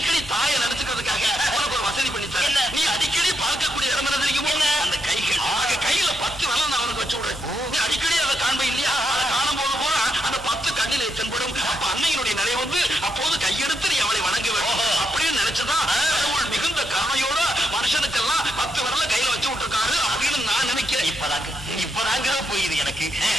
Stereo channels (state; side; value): normal; both; correlation 0.81